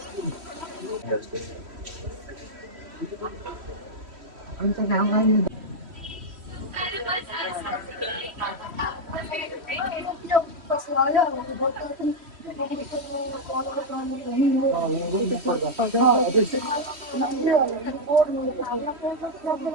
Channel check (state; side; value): late; left; 3.1 ms